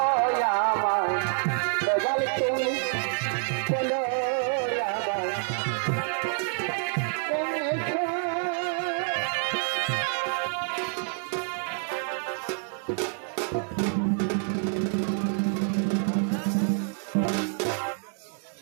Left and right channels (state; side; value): silent; left; 55 dB below the other